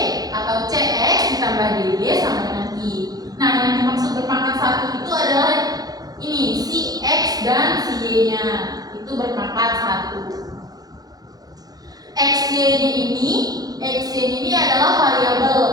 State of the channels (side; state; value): left; late; 0.19 ms